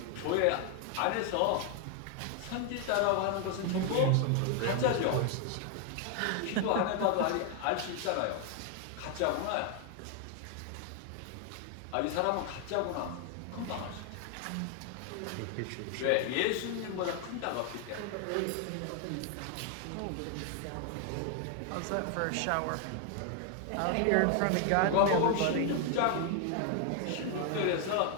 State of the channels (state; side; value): different; both; correlation 0.00